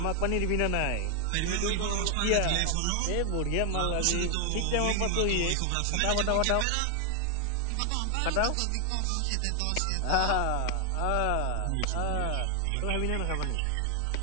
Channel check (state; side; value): different; both; correlation 0.00